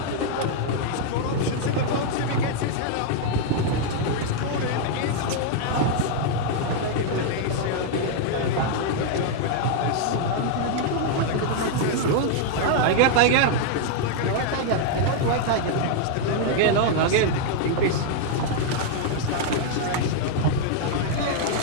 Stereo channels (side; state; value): both; different; correlation 0.00